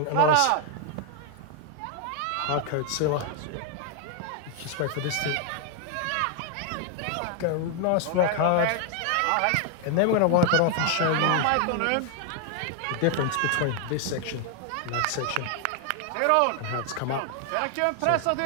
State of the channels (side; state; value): both; different; correlation 0.00